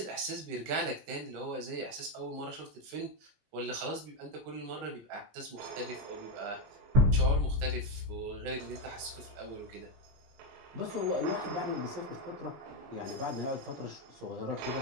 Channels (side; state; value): left; late; 19 ms